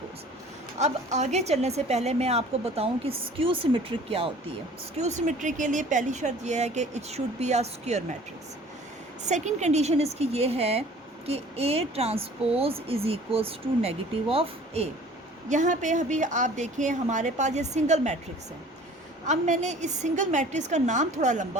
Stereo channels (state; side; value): normal; both; correlation 0.49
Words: अब आगे चलने से पहले मैं आपको बताऊं कि स्क्यू सिमेट्रिक क्या होती है। स्क्यू सिमेट्रिक के लिए पहली शर्त यह है कि it should be a square matrix. Second condition इसकी ये है कि A transpose is equals to negative of A। यहाँ पे अभी आप देखें हमारे पास ये सिंगल मैट्रिक्स है। अब मैंने इस सिंगल मैट्रिक्स का नाम थोड़ा